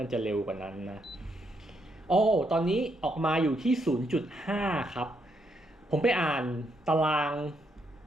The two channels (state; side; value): normal; both; correlation 0.77